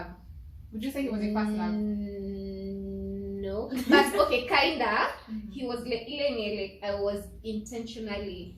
Would you say he was your first love? No, but okay, kinda. He was like, like I was intentionally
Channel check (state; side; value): identical; both; correlation 1.00